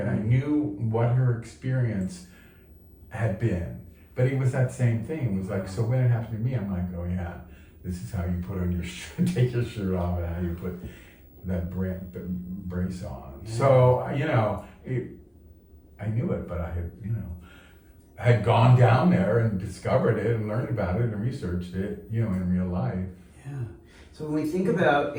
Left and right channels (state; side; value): identical; both; correlation 1.00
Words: I knew what her experience had been. But it was that same thing. It was like, so when it happened to me, I'm like, oh yeah, this is how you put on your shirt, take your shirt off, and how you put that brace on. Yeah. So, I knew it, but I had gone down there and discovered it and learned about it and researched it, in real life. Yeah. So when we think about